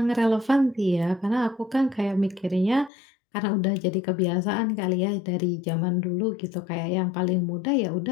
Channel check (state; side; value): drops out; right; at 2.9 s